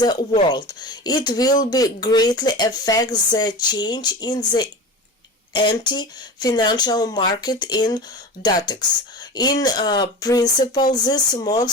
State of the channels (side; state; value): both; normal; correlation 0.30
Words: world. It will be greatly affect the change in the anti-financial market in Datex. In principle, this